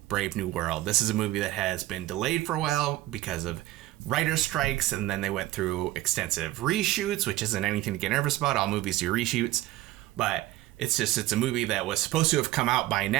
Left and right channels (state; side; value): quieter; left; 16.2 dB